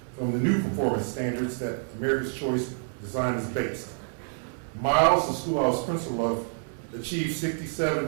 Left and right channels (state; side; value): silent; left; digital silence